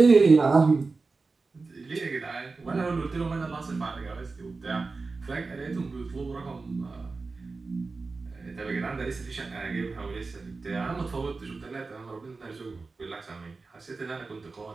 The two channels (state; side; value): quieter; left; 4.0 dB